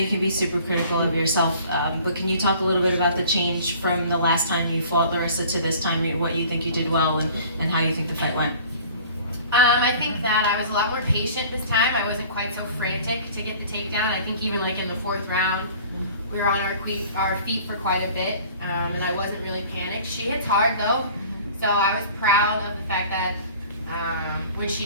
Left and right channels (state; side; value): inverted; both; correlation -0.47